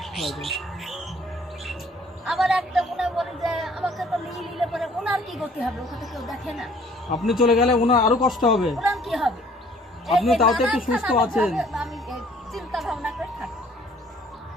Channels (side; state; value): both; normal; correlation 0.57